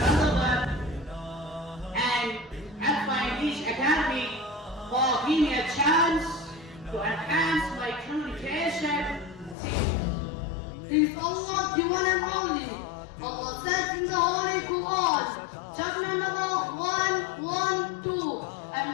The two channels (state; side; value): drops out; right; at 9.6 s